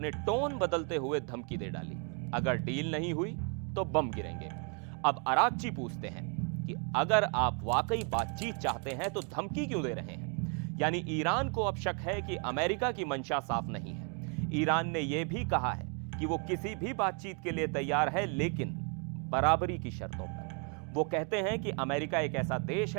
टोन बदलते हुए धमकी दे डाली, अगर डील नहीं हुई तो बम गिरेंगे। अब अराक्ची पूछते हैं कि अगर आप वाकई बातचीत चाहते हैं तो धमकी क्यों दे रहे हैं? यानी ईरान को अब शक है कि अमेरिका की मंशा साफ नहीं है। ईरान ने यह भी कहा है कि वो किसी भी बातचीत के लिए तैयार है, लेकिन बराबरी की शर्तों पर। वो कहते हैं कि अमेरिका एक ऐसा देश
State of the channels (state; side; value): quieter; left; 38.9 dB